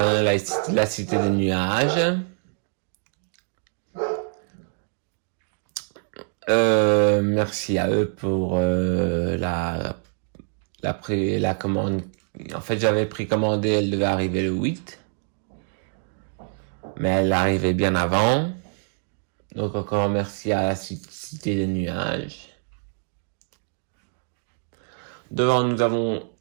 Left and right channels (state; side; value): silent; left; 62 dB below the other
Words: La Cité des Nuages. Merci à eux pour la commande. En fait, j'avais précommandé, elle devait arriver le 8. Mais elle arrivait bien avant. Donc encore merci à la Cité des Nuages. Devant, nous avons